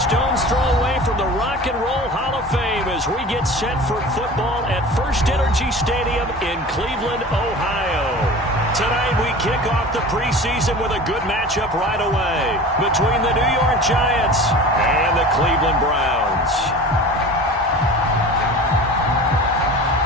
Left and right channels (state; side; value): normal; both; correlation 0.37